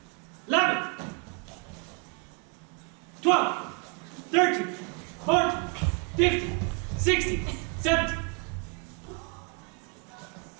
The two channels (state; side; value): quieter; left; 33.8 dB